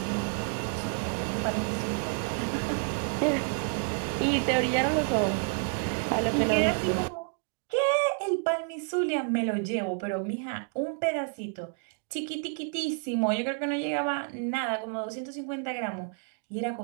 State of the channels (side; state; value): left; quieter; 38.3 dB